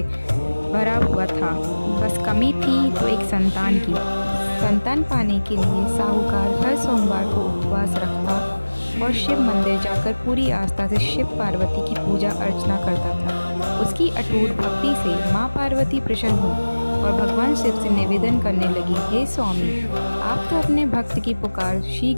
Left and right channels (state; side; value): inverted; both; correlation -1.00